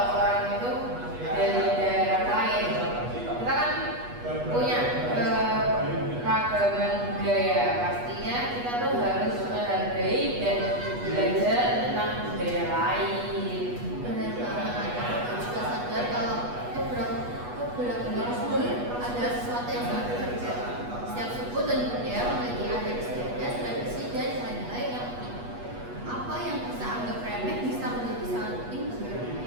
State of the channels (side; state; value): left; late; 8.2 ms